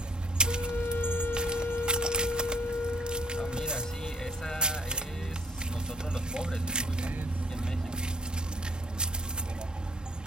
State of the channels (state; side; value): normal; both; correlation 0.62